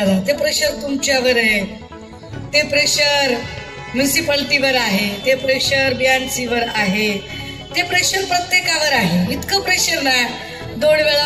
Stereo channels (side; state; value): both; identical; correlation 1.00